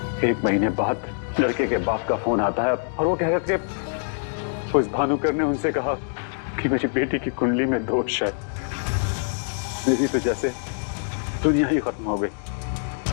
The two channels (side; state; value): right; silent; digital silence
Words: 1 महीने बाद लड़के के बाप का फोन आता है और वो कह रहे थे उस भानुकर ने उनसे कहा कि मेरी बेटी की कुंडली में दोष है। मेरी तो जैसे दुनिया ही खत्म हो गई।